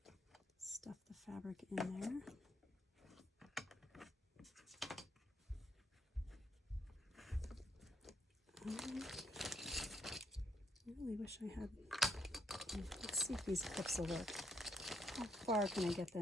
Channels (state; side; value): normal; both; correlation 0.72